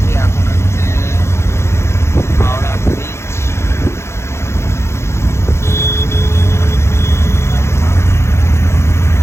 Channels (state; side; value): late; right; 0.13 ms